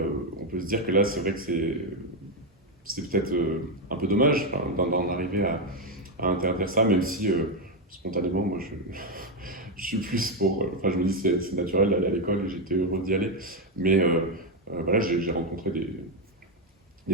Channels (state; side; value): normal; both; correlation 0.06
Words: peut se dire que là, c'est vrai que c'est peut-être un peu dommage d'en arriver à interdire ça, même si spontanément, moi, je suis plus pour... je me dis que c'est naturel d'aller à l'école et j'étais heureux d'y aller. Mais voilà, j'ai rencontré